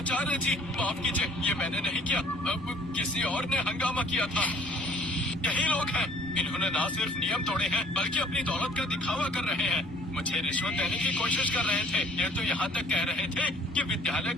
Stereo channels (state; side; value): normal; both; correlation 0.55